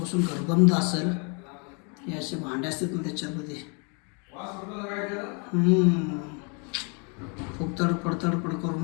गरबंद असेल. हे असे भांडे असतात ना त्याच्यामध्ये. खूप तडपड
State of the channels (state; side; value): quieter; right; 35.5 dB